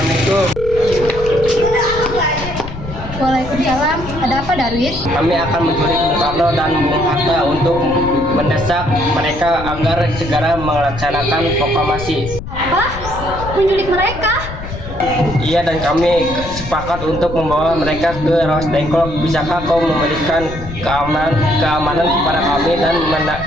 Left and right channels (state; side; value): noise; left; rumble, 10 dB below the sound